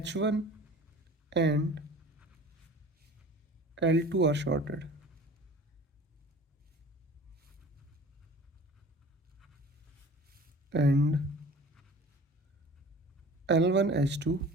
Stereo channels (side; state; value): both; normal; correlation 0.43